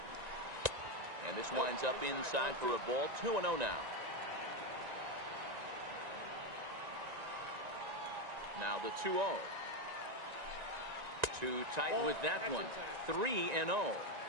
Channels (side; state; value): left; late; 1.9 ms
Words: And this winds up inside for a ball. 2-0 now. Now the 2-0. Too tight with that one. 3-0.